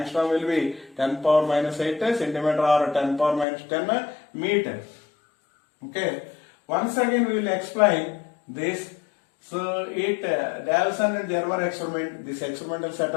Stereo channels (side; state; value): right; drops out; at 3.5 s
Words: will be 10 power minus 8 centimeter or 10 power minus 10 meters. Okay. Once again we will explain this. So Davison and Germer experiment, this experimental